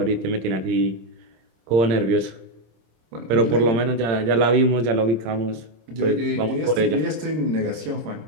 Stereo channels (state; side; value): late; left; 26 ms